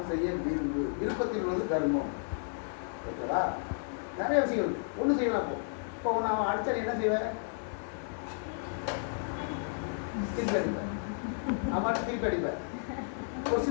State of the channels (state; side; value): silent; right; digital silence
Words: செய்ய விரும்பு, விருப்பத்தில் உள்ளது கர்மம். ஓகேவா? நிறைய விஷயங்கள் ஒன்றும் செய்யலாம். இப்போ நான் அடிச்சா என்ன செய்வேன்? திருப்பி அடிப்பேன். அம்மாட்ட திருப்பி அடிப்பேன். ஒரு